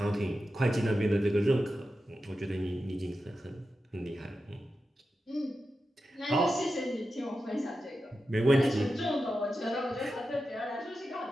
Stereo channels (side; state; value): both; normal; correlation 0.91